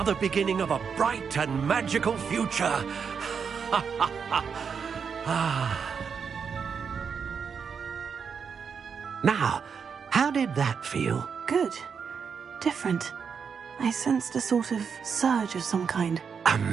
beginning of a bright and magical future. Now, how did that feel? Good. Different. I sensed a sort of surge of some kind. A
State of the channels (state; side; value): quieter; left; 6.4 dB